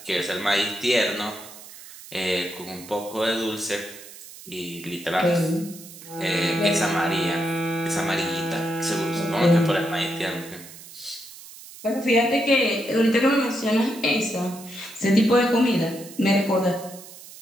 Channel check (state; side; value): noise; right; hiss, 17 dB below the sound